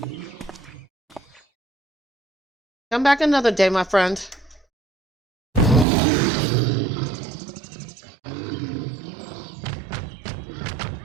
Come back another day, my friend.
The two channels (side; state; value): left; drops out; at 5.9 s